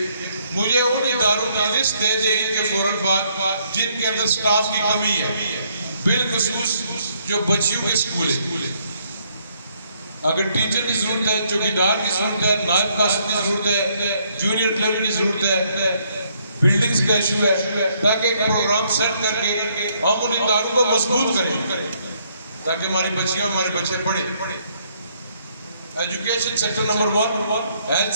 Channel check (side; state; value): both; inverted; correlation -0.70